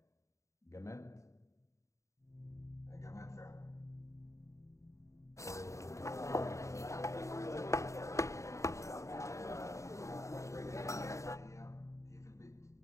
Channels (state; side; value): late; right; 0.15 ms